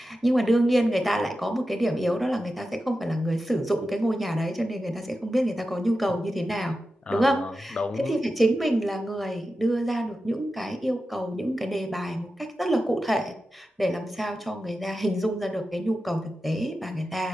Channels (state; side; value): normal; both; correlation 0.92